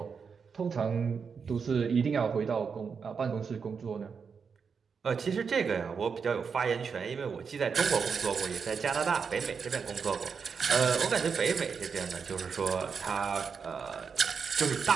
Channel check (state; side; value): quieter; left; 5.9 dB